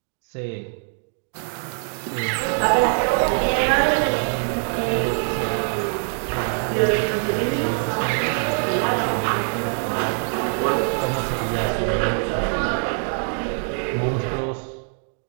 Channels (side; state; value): left; silent; 57 dB below the other